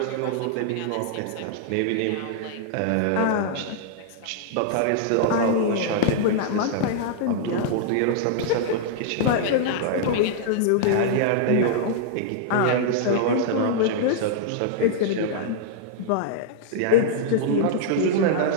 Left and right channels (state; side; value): different; both; correlation -0.01